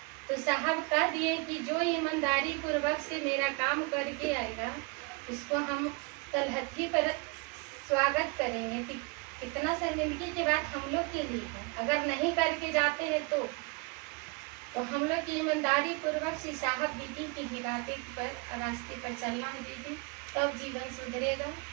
तो साहब कह दिए कि जो ईमानदारी पूर्वक से मेरा काम करके आएगा उसको हम तलहथी पर स्वागत करेंगे। कितना शर्मिंदगी की बात हम लोग के लिए है, अगर नहीं करके जाते हैं तो हम लोग की ईमानदारी पूर्वक से साहब दीदी की हिदायत पर रास्ते पर चलना है दीदी, तब जीवन सुधरेगा।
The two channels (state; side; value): quieter; left; 28.7 dB